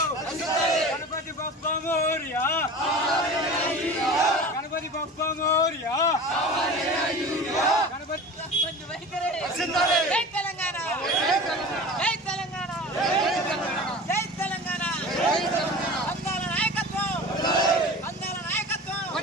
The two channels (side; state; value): both; normal; correlation 0.36